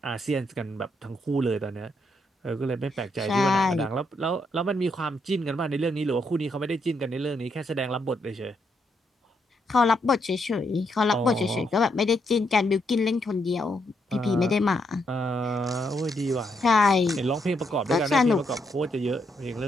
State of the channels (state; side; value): normal; both; correlation 0.77